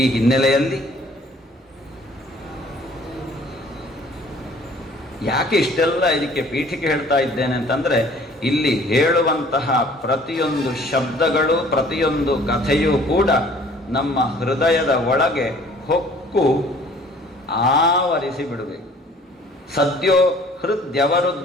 ಹಿನ್ನೆಲೆಯಲ್ಲಿ ಯಾಕೆ ಇಷ್ಟೆಲ್ಲ ಇದಕ್ಕೆ ಪೀಠಿಕೆ ಹೇಳ್ತಾ ಇದ್ದೇನೆ ಅಂತಂದ್ರೆ, ಇಲ್ಲಿ ಹೇಳುವಂತಹ ಪ್ರತಿಯೊಂದು ಶಬ್ದಗಳು, ಪ್ರತಿಯೊಂದು ಕಥೆಯೂ ಕೂಡ ನಮ್ಮ ಹೃದಯದ ಒಳಗೆ ಹೊಕ್ಕು ಆವರಿಸಿ ಬಿಡಬೇಕು. ಸದ್ಯೋ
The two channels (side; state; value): both; normal; correlation 0.54